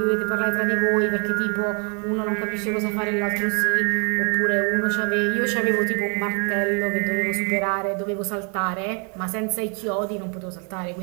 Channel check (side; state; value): left; quieter; 37.1 dB